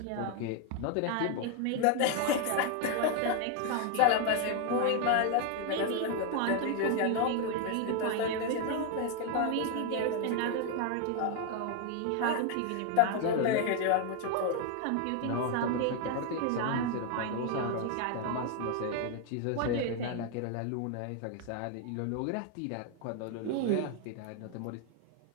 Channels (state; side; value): different; both; correlation 0.01